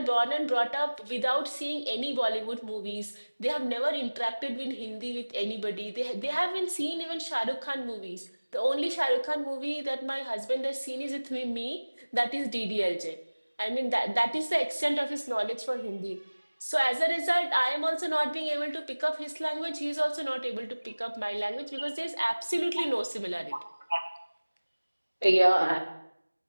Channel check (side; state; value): both; inverted; correlation -1.00